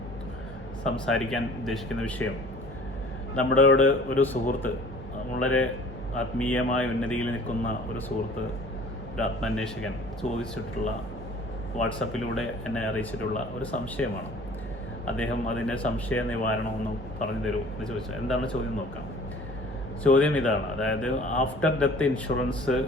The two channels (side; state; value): both; normal; correlation 0.49